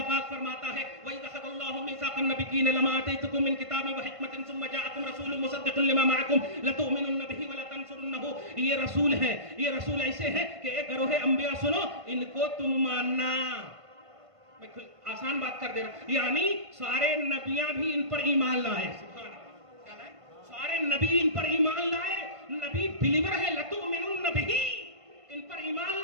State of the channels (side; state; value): left; late; 1.5 ms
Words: पाक फरमाता है, वही अखज़ल्लाहु मीसाक़न नबिय्यीन लमा आतैतुकुम मिन किताबिन व हिकमतिन सुम्मा जाअकुम रसूलुन मुसद्दिक़ुन लिमा मअकुम लतु'मिनुन्न बिही व लतंसुरुन्नहु। ये रसूल है, ये रसूल ऐसे हैं कि एक गरोह अंबिया सुनो, इनको तुम मानना। मैं आसान बात कर दे रहा हूं, यानी सारे नबियां भी इन पर ईमान लाए। सुभान अल्लाह, क्या लाए? सारे नबी इन पर ईमान लाए। नबी बिलीवर है, लतु'मिनुन्न बिही, इन पर ईमान